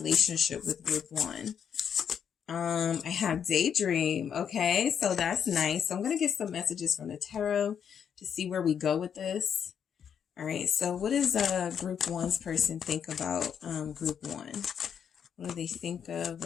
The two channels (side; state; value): right; quieter; 7.9 dB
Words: with group one? I have daydream. Okay, so that's nice. So I'm going to get some messages from the tarot to see where we go with this. All right, so what does group one's person think about group one? What do they think of